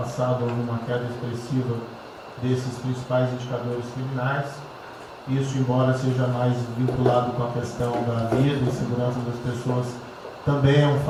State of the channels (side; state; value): both; identical; correlation 1.00